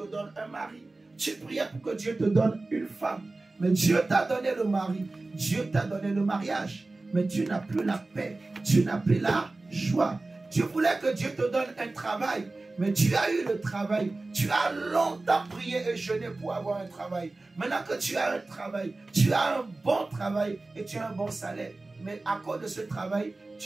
donne un mari. Tu priais pour que Dieu te donne une femme. Mais Dieu t'a donné le mari. Dieu t'a donné le mariage. Mais tu n'as plus la paix. Tu n'as plus la joie. Tu voulais que Dieu te donne un travail. Mais tu as eu le travail. Tu as longtemps prié et jeûné pour avoir un travail. Maintenant que tu as un travail, tu as un bon travail et tu as un bon salaire. Mais à cause de ce travail,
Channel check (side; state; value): left; quieter; 3.2 dB